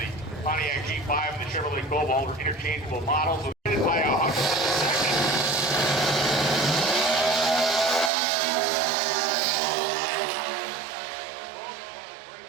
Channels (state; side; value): drops out; left; at 8.1 s